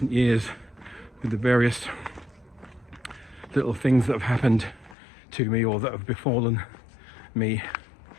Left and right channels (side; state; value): right; drops out; at 5.0 s